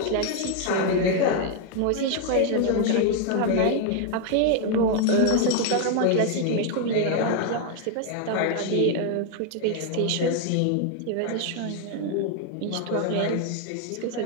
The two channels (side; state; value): both; different; correlation 0.01